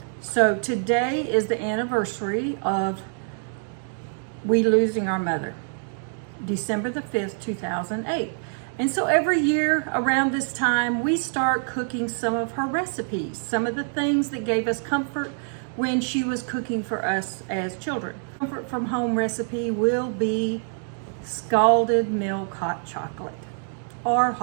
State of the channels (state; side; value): silent; left; 61 dB below the other